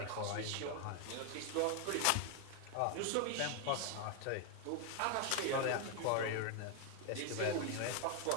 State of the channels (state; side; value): different; both; correlation 0.01